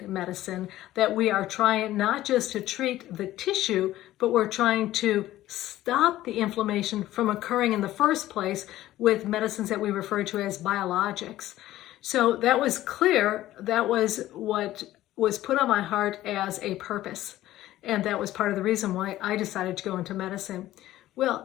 medicine that we are trying not just to treat the tissue, but we're trying to stop the inflammation from occurring in the first place with medicines that we refer to as biologics. So that was clear. That was what was put on my heart as a purpose. And that was part of the reason why I decided to go into medicine.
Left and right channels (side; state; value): right; quieter; 14.7 dB